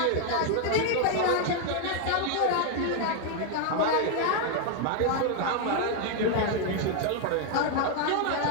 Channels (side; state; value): both; different; correlation 0.00